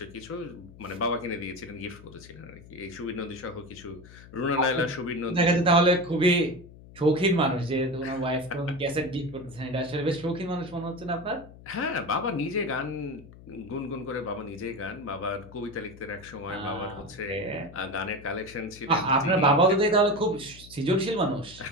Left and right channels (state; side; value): noise; left; hum, 19 dB below the sound